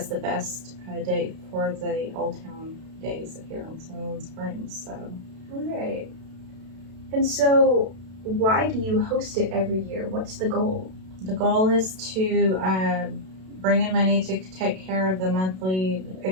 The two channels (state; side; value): late; left; 32 ms